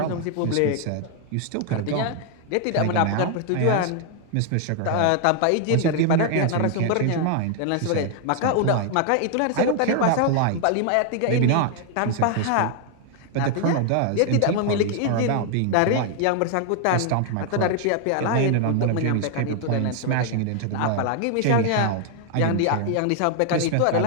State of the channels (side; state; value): both; different; correlation 0.00